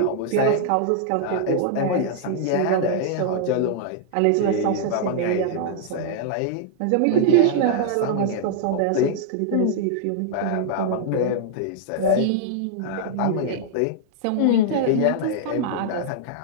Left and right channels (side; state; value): both; different; correlation -0.01